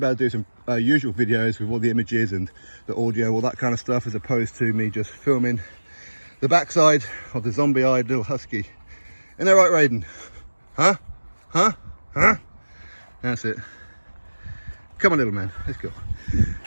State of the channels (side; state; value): both; inverted; correlation -1.00